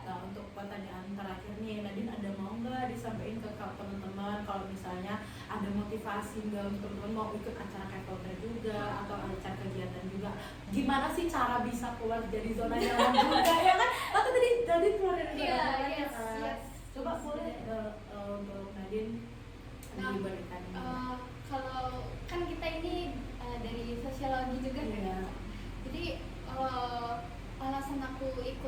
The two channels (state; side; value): identical; both; correlation 1.00